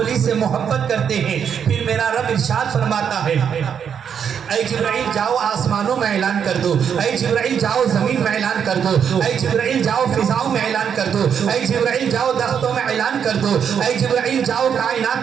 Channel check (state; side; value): quieter; left; 7.7 dB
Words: سے محبت کرتے ہیں. پھر میرا رب ارشاد فرماتا ہے اے جبرائیل جاؤ آسمانوں میں اعلان کر دو, اے جبرائیل جاؤ زمین میں اعلان کر دو, اے جبرائیل جاؤ فضاؤں میں اعلان کر دو, اے جبرائیل جاؤ درختوں میں اعلان کر دو, اے جبرائیل جاؤ